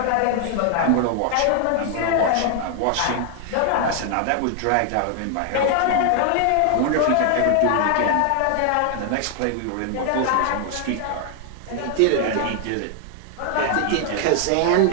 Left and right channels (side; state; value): both; different; correlation 0.00